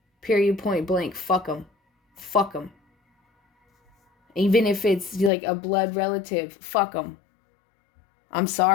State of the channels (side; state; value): right; drops out; at 5.3 s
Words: Period, point blank. Fuck them. Fuck them. Even if it's like a blood relative, fuck them. I'm